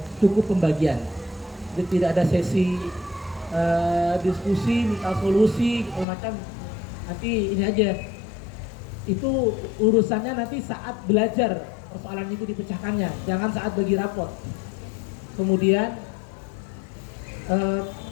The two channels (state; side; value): drops out; right; at 6.1 s